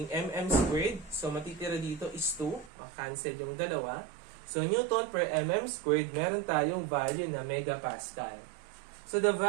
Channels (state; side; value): drops out; left; at 2.7 s